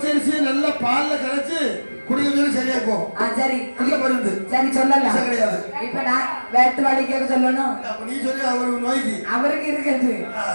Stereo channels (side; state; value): both; inverted; correlation -1.00